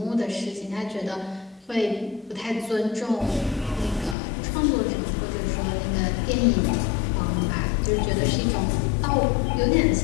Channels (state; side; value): drops out; right; at 4.2 s